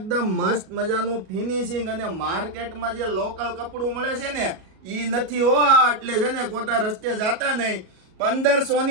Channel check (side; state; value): left; late; 37 ms